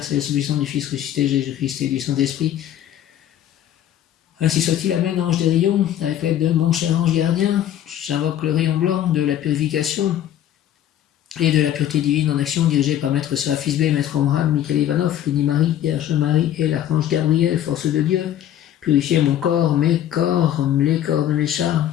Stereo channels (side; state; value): right; quieter; 11.3 dB